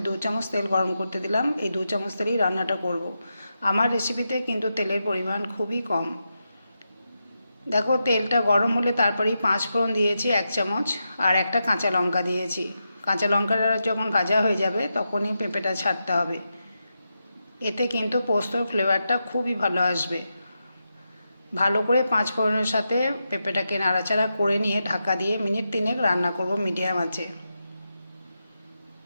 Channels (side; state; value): both; inverted; correlation -0.88